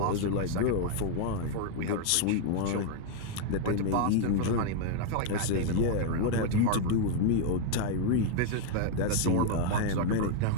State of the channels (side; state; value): both; different; correlation 0.00